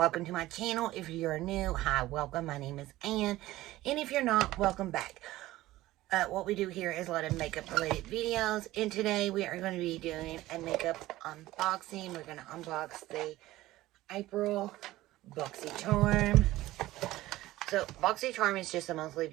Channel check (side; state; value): left; quieter; 16.6 dB